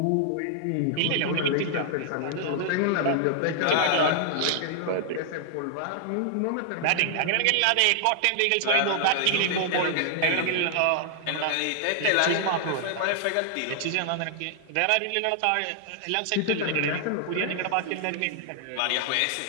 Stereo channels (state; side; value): different; both; correlation -0.01